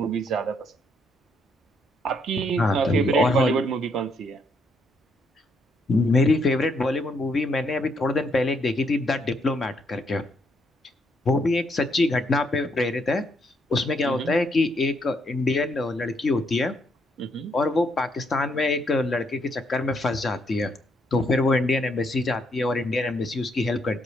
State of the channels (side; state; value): both; normal; correlation 0.73